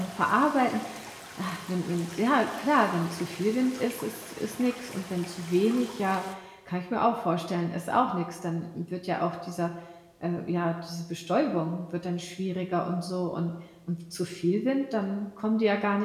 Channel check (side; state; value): both; identical; correlation 1.00